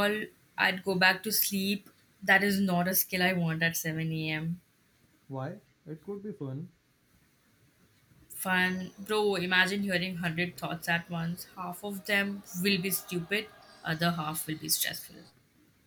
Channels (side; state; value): both; identical; correlation 1.00